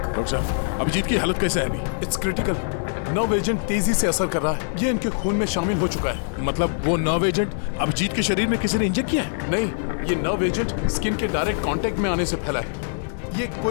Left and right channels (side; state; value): right; silent; digital silence